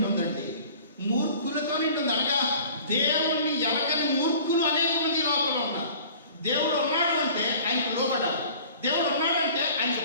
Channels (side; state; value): both; inverted; correlation -0.46